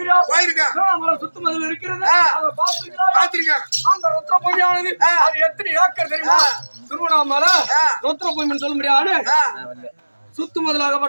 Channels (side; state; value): both; inverted; correlation -1.00